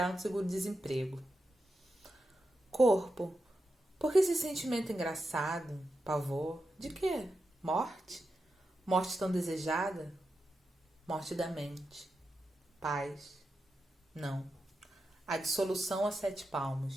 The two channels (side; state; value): both; normal; correlation 0.89